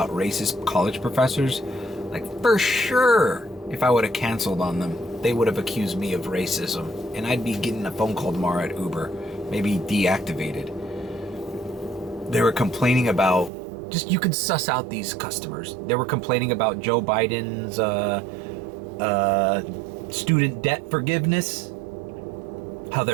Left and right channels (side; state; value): left; drops out; at 13.5 s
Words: racist college professors. Like, for sure, if I would have canceled on them, they would have accused me of racism, and I'd be getting a phone call tomorrow at Uber, maybe deactivated. They were complaining about, just, you could suss out these customers. They were complaining about Joe Biden's student debt forgiveness. How